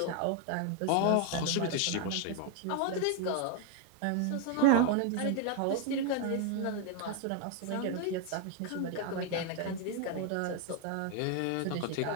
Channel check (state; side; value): different; both; correlation 0.01